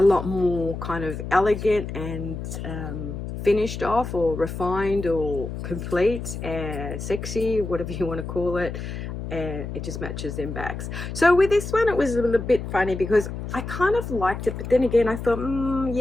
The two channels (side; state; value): left; noise; hum, 7 dB below the sound